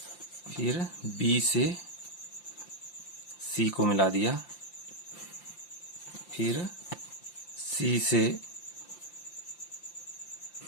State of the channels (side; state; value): right; late; 5.8 ms